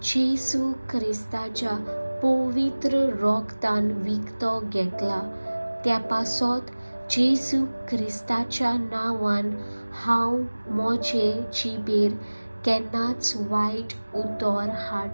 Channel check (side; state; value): both; inverted; correlation -1.00